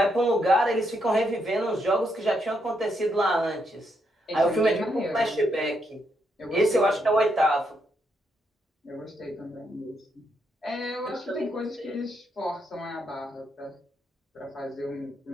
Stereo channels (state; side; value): normal; both; correlation 0.78